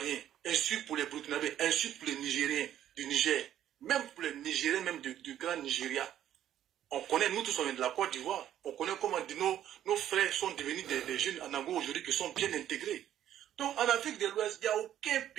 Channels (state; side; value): quieter; left; 11.3 dB